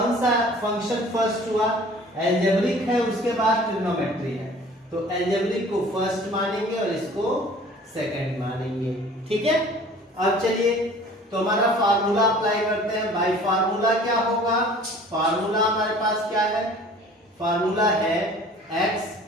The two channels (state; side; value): normal; both; correlation 0.48